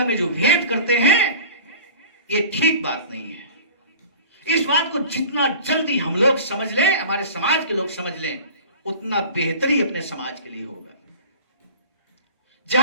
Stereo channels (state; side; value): inverted; both; correlation -0.40